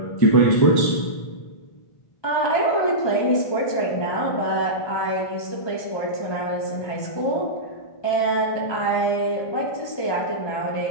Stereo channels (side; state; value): right; late; 1.2 ms